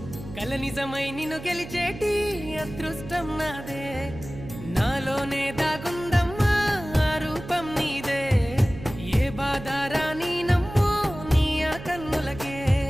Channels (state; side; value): noise; right; hum, 13 dB below the sound